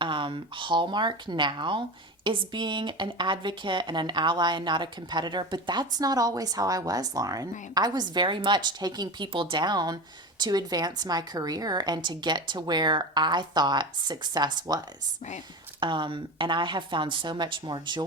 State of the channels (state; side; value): normal; both; correlation 0.26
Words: hallmark now is being an advocate and an ally and not a competitor. But that's not always how I was, Lauren. Right. I was very much taking people down to advance my career and to get to where I thought success was. Right. And I have found so much more